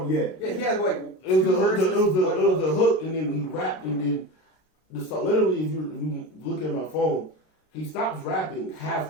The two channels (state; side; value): late; right; 32 ms